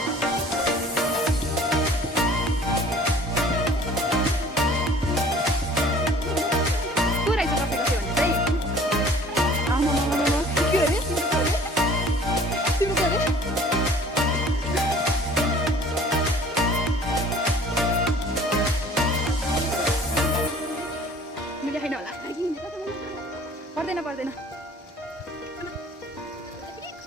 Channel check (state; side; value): normal; both; correlation 0.50